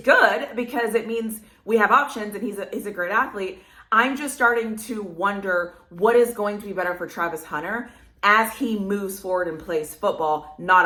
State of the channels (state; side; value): identical; both; correlation 1.00